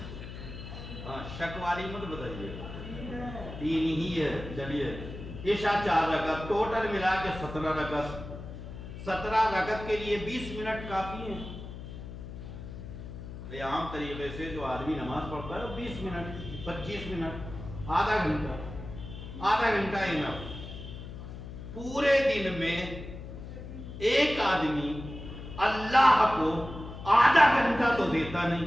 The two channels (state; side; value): noise; left; hum, 11 dB below the sound